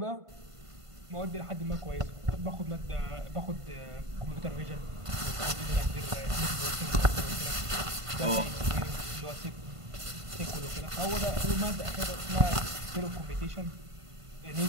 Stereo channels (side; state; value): left; late; 1.5 ms